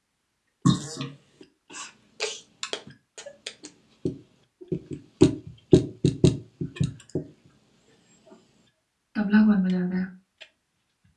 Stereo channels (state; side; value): identical; both; correlation 1.00